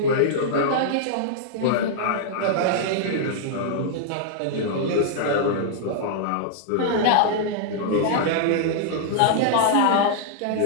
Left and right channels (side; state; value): both; different; correlation -0.01